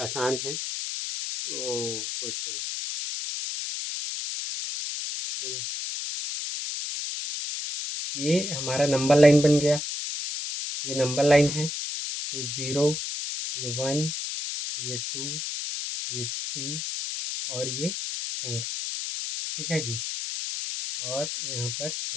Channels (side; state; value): left; noise; hiss, 4 dB below the sound